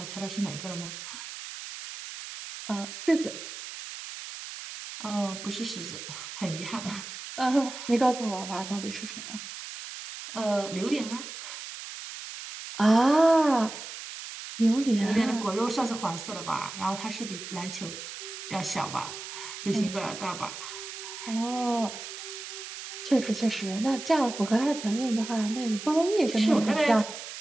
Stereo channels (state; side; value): noise; right; hiss, 10 dB below the sound